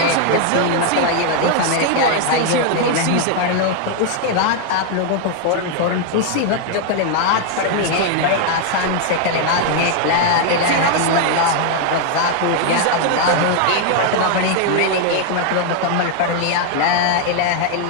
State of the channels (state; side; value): different; both; correlation 0.00